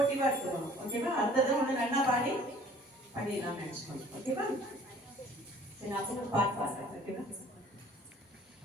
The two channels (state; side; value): normal; both; correlation 0.53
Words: இருக்கணும். ஓகேவா? அடுத்தது ஒன்று நல்லா பாடி பண்ணிடலாம் நினைச்சுக்கணும். ஓகேவா? சரி, நான் ஒரு பாட்டு பாடுறேன். ஓகேவா?